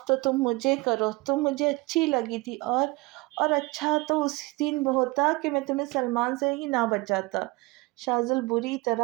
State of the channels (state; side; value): quieter; left; 23.4 dB